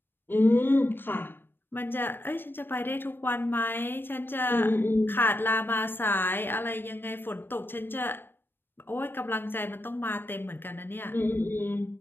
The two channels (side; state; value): right; late; 0.098 ms